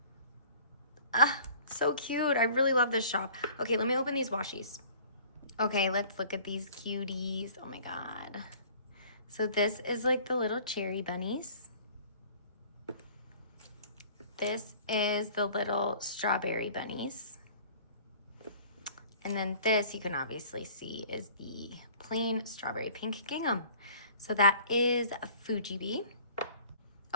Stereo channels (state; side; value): inverted; both; correlation -0.50